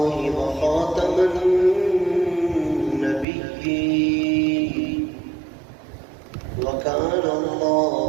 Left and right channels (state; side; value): drops out; left; at 3.2 s